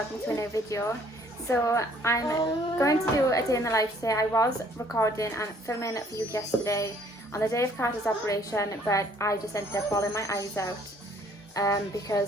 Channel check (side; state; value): both; normal; correlation 0.60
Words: to a new video. So I'm going to do a day in the life today. I was recording and filming for you yesterday on the day of Carter's operation, but I just ended up bawling my eyes out